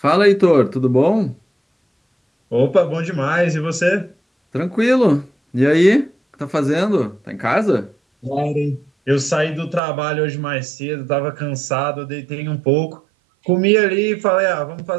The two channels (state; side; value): drops out; left; at 9.8 s